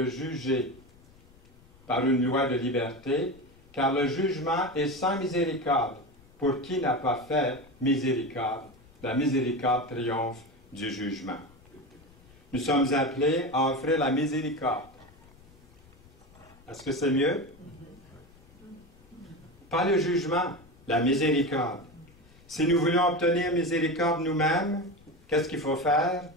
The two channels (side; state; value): left; noise; rumble, 26 dB below the sound